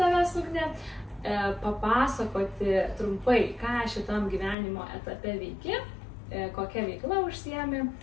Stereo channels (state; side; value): drops out; right; at 4.5 s